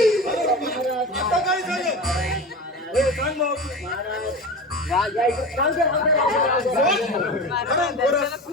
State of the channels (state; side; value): normal; both; correlation 0.29